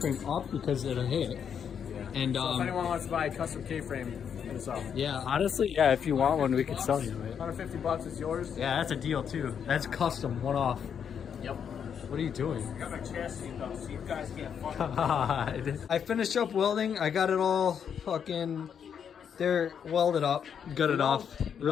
up because it'll hit. And So if anyone wants to buy a custom K-frame, hit us up. yeah, honestly, yeah, if you want one, we could sell you it. $150 is yours. Yeah, that's a deal too. That's custom, one off. Yep. What are you doing? I got my chassis though, so you guys can't fuck. God. I finished up welding. I got it all fucking. They're welded up, gutted off.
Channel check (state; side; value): quieter; right; 7.7 dB